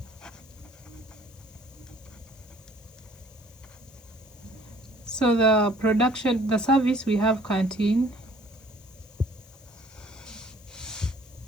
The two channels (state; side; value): noise; left; hiss, 26 dB below the sound